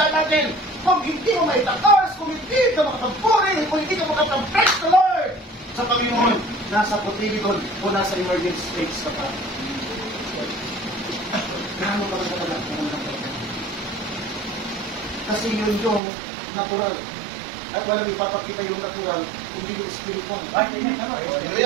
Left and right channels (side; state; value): left; drops out; at 16.0 s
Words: natin, kung hindi mo may takas, kung hindi ka makapagpuri, kung hindi ka makapag-praise the Lord sa Panginoon, nasa Cotyledon o nasa emergency states ka pa. Gaano ka lang talaga? Kasi yun yung natural. At walang ipapakita yung natural, hindi yung spiritual.